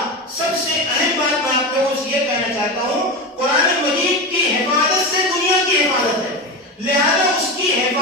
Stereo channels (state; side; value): normal; both; correlation 0.20